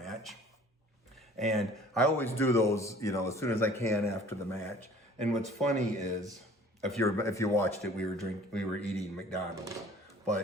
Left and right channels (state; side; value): normal; both; correlation 0.50